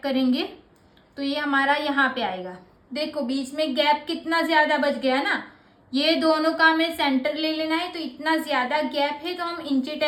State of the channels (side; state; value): both; identical; correlation 1.00